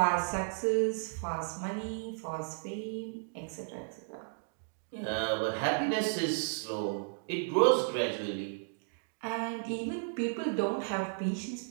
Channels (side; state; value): left; silent; digital silence